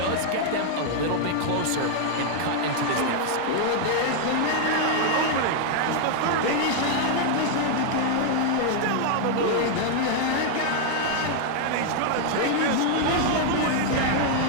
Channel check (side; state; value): both; different; correlation 0.00